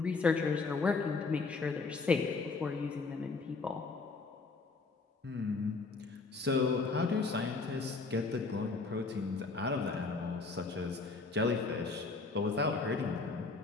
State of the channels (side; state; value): right; quieter; 4.1 dB